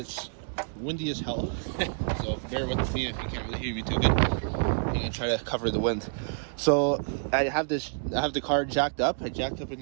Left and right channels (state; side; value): silent; left; digital silence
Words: windy as hell, so bear with me if you can't really hear me too good. I'm going to try to cover the wind. So, I have the car jacked up. I jacked up in